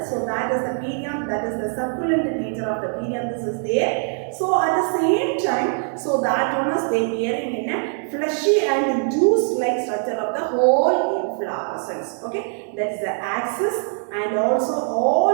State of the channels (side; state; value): left; silent; 56 dB below the other